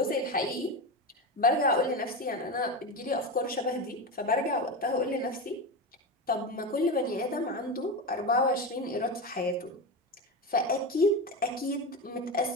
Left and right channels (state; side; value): normal; both; correlation 0.19